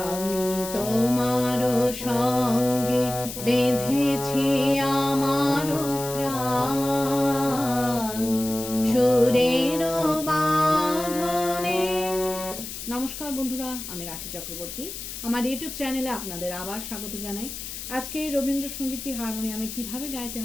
তোমার সঙ্গে বেঁধেছি আমার প্রাণ সুরের বাঁধনে। নমস্কার বন্ধুরা, আমি রাখি চক্রবর্তী। আমার ইউটিউব চ্যানেলে আপনাদের আবার স্বাগত জানাই। আজকে এই রবীন্দ্রসঙ্গীতটি হারমোনিয়ামে কিভাবে গাইতে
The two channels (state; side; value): noise; left; hiss, 9 dB below the sound